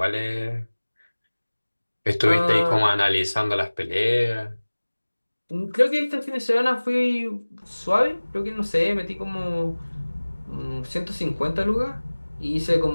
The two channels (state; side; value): inverted; both; correlation -1.00